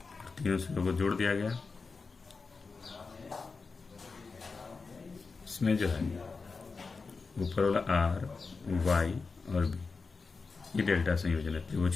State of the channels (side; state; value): right; quieter; 4.4 dB